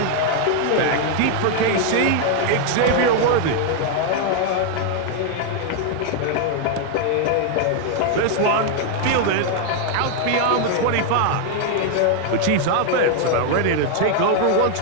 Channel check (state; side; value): different; both; correlation 0.00